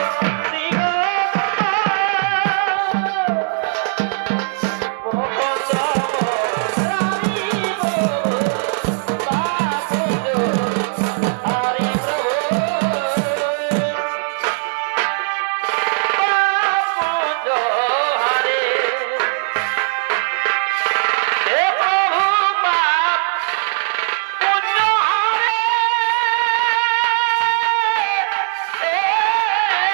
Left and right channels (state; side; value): silent; left; 67 dB below the other